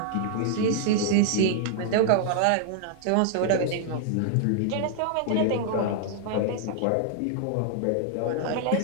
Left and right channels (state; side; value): different; both; correlation -0.01